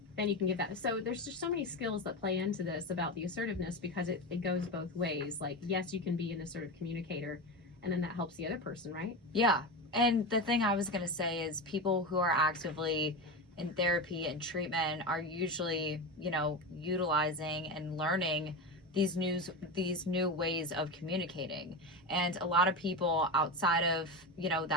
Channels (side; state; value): both; normal; correlation 0.21